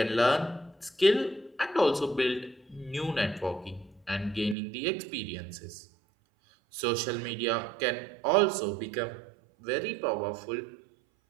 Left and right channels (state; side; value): drops out; left; at 4.5 s